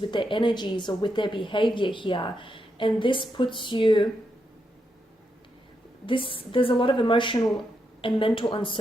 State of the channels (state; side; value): normal; both; correlation 0.82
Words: their energies or with their behavior here, and this puts you, there's a lot of emotional and mental